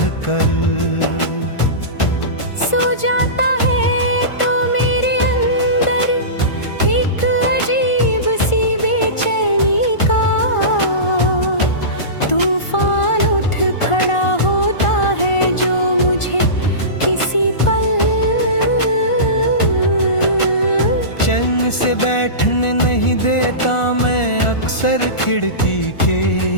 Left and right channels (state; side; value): late; right; 1.4 ms